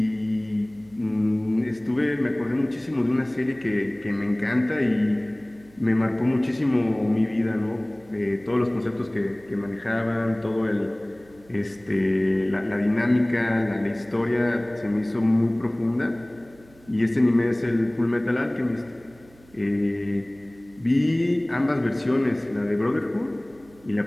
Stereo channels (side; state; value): right; noise; hum, 27 dB below the sound